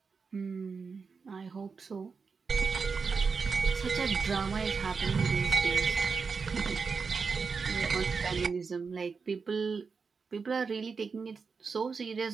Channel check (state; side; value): quieter; left; 5.1 dB